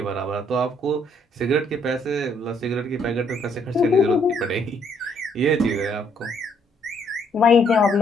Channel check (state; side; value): normal; both; correlation 0.68